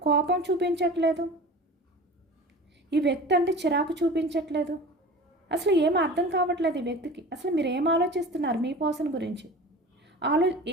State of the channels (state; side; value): normal; both; correlation 0.37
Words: కోపం చూపించట్లేదు, ఈ వ్యక్తి అంటే చిరాకు చూపించట్లేదు. అసలు ఏం అర్థం కావట్లేదు ఈ వ్యక్తికి. అసలు మీరు ఏం ఆలోచిస్తున్నారు మీ పర్సన్ గురించి